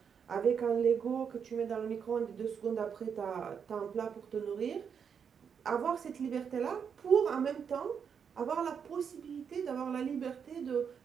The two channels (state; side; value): quieter; left; 7.0 dB